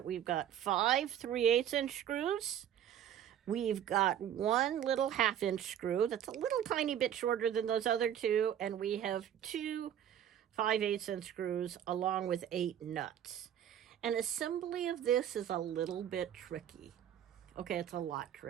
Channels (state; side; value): quieter; left; 10.2 dB